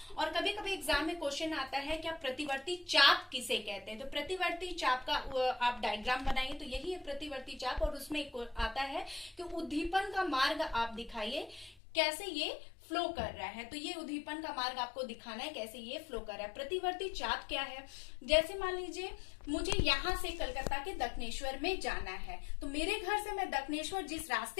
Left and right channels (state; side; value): drops out; right; at 11.8 s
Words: और कभी कभी एग्जाम में क्वेश्चन आता है क्या प्रतिवर्ती चाप किसे कहते हैं। तो प्रतिवर्ती चाप का आप डायग्राम बनाइए, तो यही है प्रतिवर्ती चाप। और उसमें आता है कि उद्दीपन का मार्ग आप दिखाइए कैसे ये फ्लो कर रहा है। तो ये उद्दीपन का मार्ग आपको दिखाना है कैसे ये फ्लो कर रहा है। प्रतिवर्ती चाप क्या है, जैसे मान लीजिए मुझे यहाँ से कलकत्ता के दक्षिणेश्वर में जाना है, तो मेरे घर से मैं दक्षिणेश्वर जिस